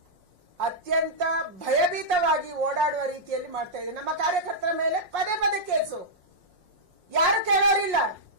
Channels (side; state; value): left; late; 5.6 ms